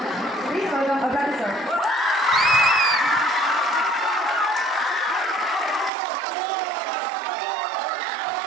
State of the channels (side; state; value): left; drops out; at 5.9 s